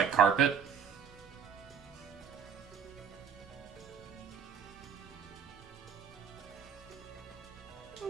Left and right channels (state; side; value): quieter; left; 7.4 dB